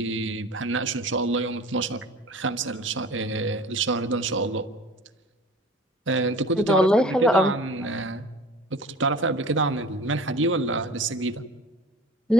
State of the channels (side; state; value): both; normal; correlation 0.41